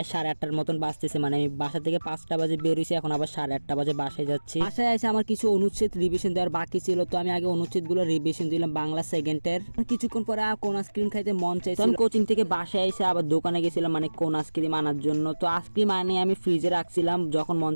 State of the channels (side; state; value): both; inverted; correlation -1.00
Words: 8:30টার মতন বাজতেছে, মানে আমি বাসা থেকে 5টা বাজে বেরিয়েছি, এখন আবার 8:30 বাজে বাসায় যাচ্ছি। বাসায় এসে আমার কিছু অনুচ্ছেদ রিভিশন দেওয়ার বাকি ছিল, তো আমি আগে অনুচ্ছেদগুলো রিভিশন দিলাম বাংলা সেকেন্ডের। কিছুক্ষণ পরে কোন আইসক্রিম খাইতে মন চাইছিল, আমি কোচিং থেকে বাসায় এসে আবার দোকানে গেছিলাম, মানে কোন আইসক্রিম আনার জন্য। তো আইসক্রিম আনিয়ে আমি ফ্রিজে রাখছিলাম, যখন মন